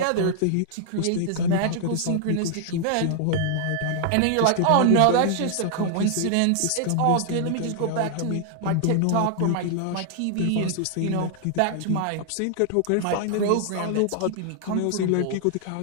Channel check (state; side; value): different; both; correlation 0.00